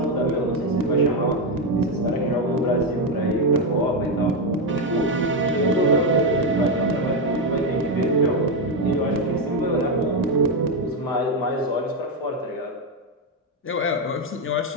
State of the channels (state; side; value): normal; both; correlation 0.06